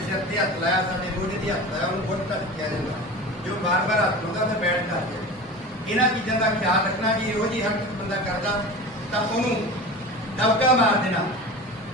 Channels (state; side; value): normal; both; correlation 0.33